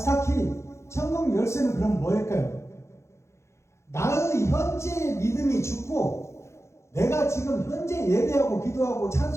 천국 열쇠는 그럼 뭐일까요? 나의 현재 믿음이 죽고 내가 지금 현재 예배하고 기도하고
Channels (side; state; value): right; late; 0.13 ms